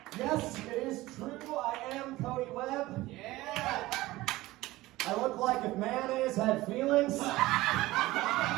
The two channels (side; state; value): left; quieter; 18.2 dB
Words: Yes, it is true. I am Cody Webb. Yeah. I look like if mayonnaise had feelings.